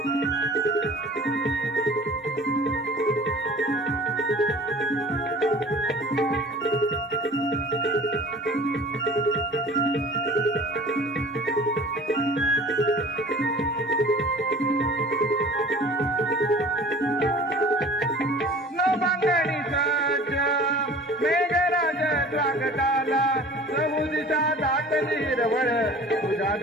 नवंगणी सज्ज मेघराज स्वागताला समुदिता दाटली हिरवळ तुझ्या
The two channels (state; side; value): normal; both; correlation 0.44